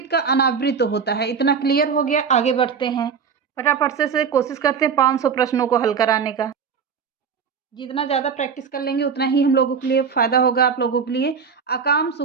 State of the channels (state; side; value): quieter; left; 6.3 dB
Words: का अनावृत होता है। इतना क्लियर हो गया, आगे बढ़ते हैं। फटाफट से कोशिश करते हैं 500 प्रश्नों को हल कराने का। जितना ज़्यादा प्रैक्टिस कर लेंगे उतना ही हम लोगों के लिए फायदा होगा, आप लोगों के लिए। अकाम